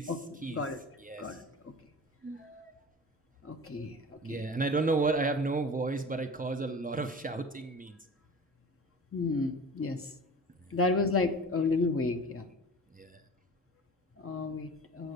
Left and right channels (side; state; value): both; normal; correlation 0.38